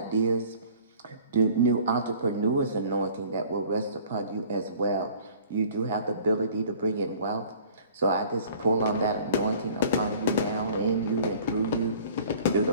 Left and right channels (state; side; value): inverted; both; correlation -0.50